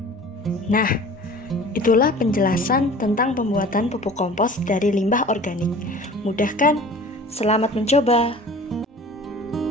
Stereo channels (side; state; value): both; normal; correlation 0.43